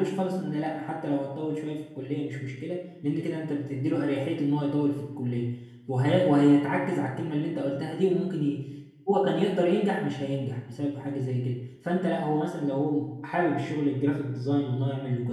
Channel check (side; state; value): both; identical; correlation 1.00